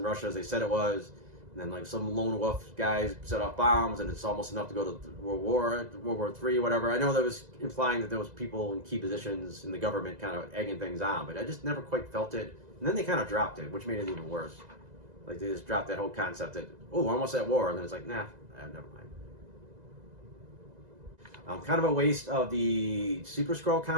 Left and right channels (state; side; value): late; left; 2.0 ms